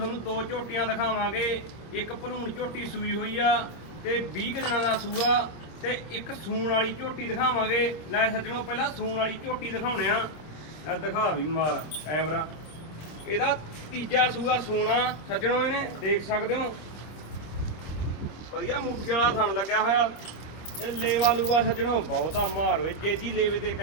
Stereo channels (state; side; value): late; right; 26 ms